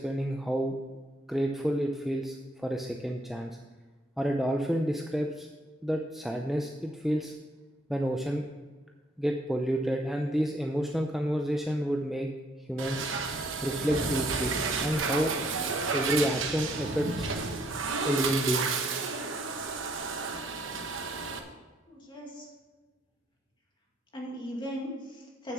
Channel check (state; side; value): normal; both; correlation 0.68